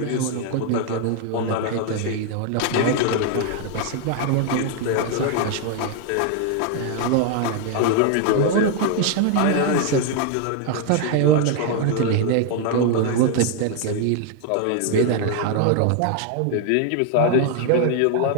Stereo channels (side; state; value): both; different; correlation 0.00